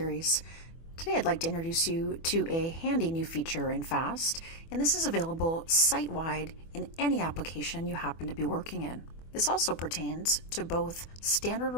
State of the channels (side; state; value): right; late; 24 ms